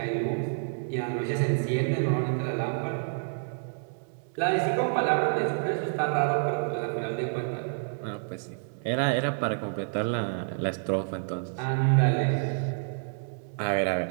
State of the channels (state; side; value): silent; left; digital silence